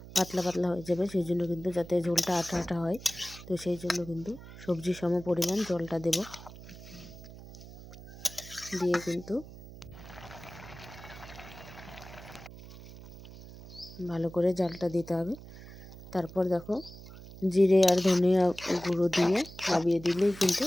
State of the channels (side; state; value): right; noise; hum, 16 dB below the sound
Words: পাতলা পাতলা হয়ে যাবে। সেই জন্য কিন্তু যাতে ঝোলটা আঠা আঠা হয়, তো সেই জন্য কিন্তু সবজি সম পরিমাণ জলটা দেব। দিয়ে কিন্তু ভালো করে জালটা দিতে হবে। তারপর দেখো, জিরে আর ধনিয়া গুঁড়ো দিয়ে নামিয়ে দিলেই কিন্তু